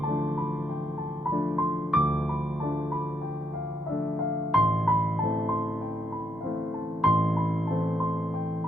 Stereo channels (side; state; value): both; normal; correlation 0.77